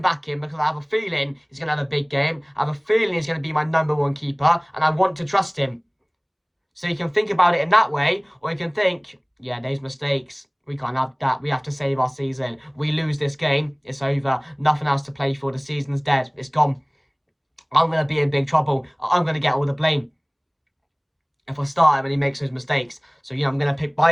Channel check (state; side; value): identical; both; correlation 1.00